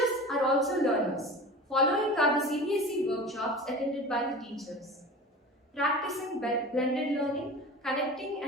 are also learners. Following are the CBSE workshops attended by the teachers. Practicing blended learning, connecting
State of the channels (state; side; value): normal; both; correlation 0.34